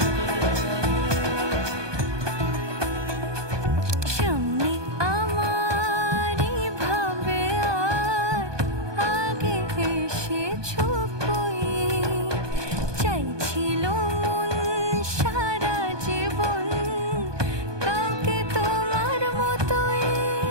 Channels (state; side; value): late; left; 1.2 ms